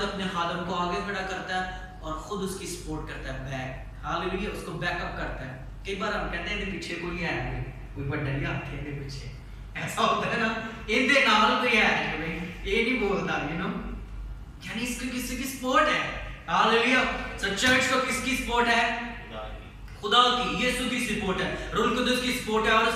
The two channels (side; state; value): both; identical; correlation 1.00